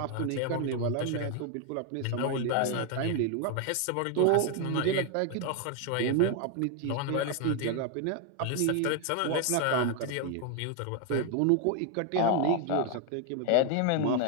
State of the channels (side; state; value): both; different; correlation 0.01